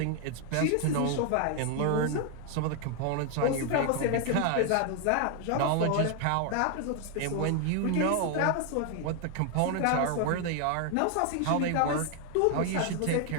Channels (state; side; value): different; both; correlation 0.01